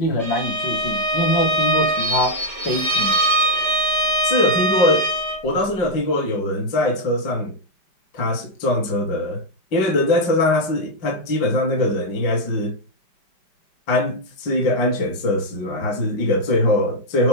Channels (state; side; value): late; right; 5.0 ms